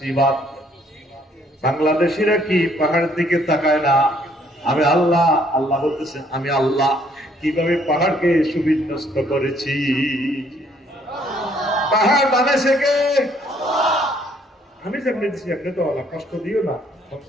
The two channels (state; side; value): normal; both; correlation 0.65